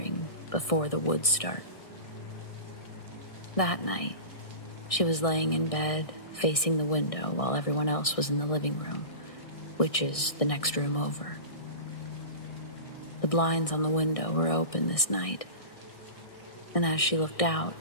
before the woods start. That night, she was laying in bed, facing the window, while everyone else was in the living room, which is the next room over. The blinds on the window were open this night, and as she looked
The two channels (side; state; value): right; late; 1.6 ms